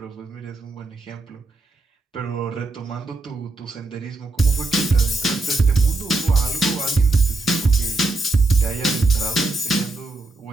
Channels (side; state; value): left; quieter; 3.1 dB